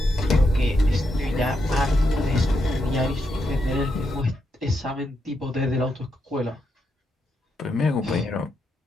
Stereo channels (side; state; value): both; normal; correlation 0.82